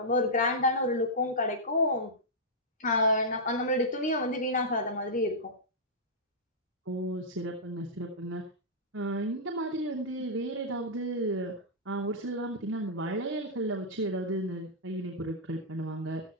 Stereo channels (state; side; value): normal; both; correlation -0.11